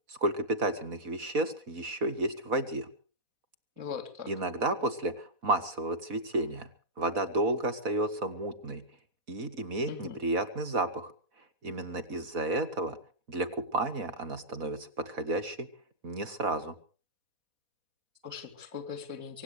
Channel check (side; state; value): left; late; 4.1 ms